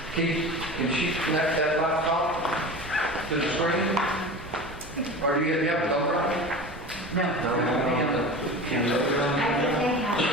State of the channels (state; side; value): normal; both; correlation 0.33